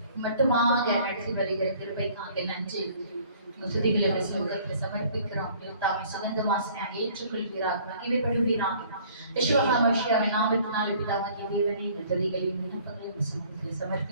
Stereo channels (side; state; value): both; inverted; correlation -0.55